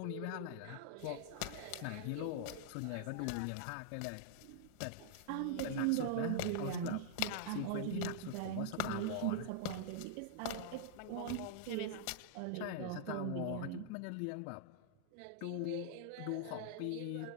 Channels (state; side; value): different; both; correlation -0.01